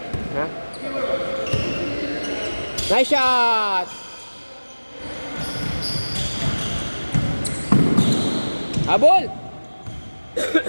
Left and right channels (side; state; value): both; inverted; correlation -1.00